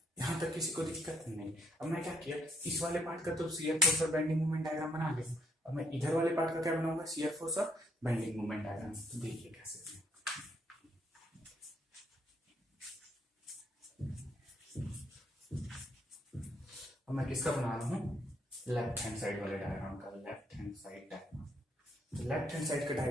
यहां तक किसी को दिक्कत नहीं। अब मैं क्या किया, इस वाले पार्ट का तो शियर फोर्स और बेंडिंग मोमेंट डायग्राम बना लिया। अब मैं इधर वाले पार्ट का क्या बनाऊंगा, शियर फोर्स और बेंडिंग मोमेंट डायग्राम। तो देखिए कैसे। अब मैं किसका बना रहा हूँ, लेफ्ट हैंड साइड वाले डायग्राम का, लेफ्ट हैंड साइड डायग्राम। तो लेफ्ट हैंड साइड का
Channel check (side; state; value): both; normal; correlation 0.73